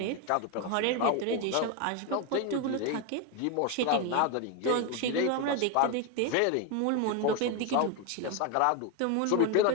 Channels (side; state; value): both; different; correlation 0.02